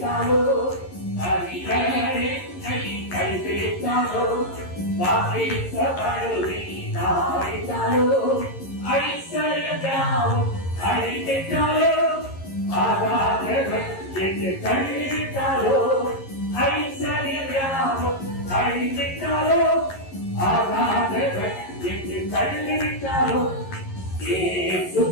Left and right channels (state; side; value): late; right; 11 ms